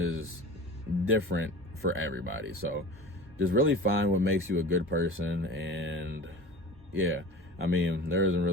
different for everybody. So just really find what makes you a good person. And yeah, I mean, there isn't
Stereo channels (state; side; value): normal; both; correlation 0.36